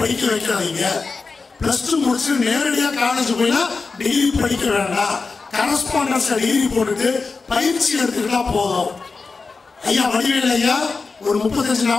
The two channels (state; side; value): quieter; right; 4.3 dB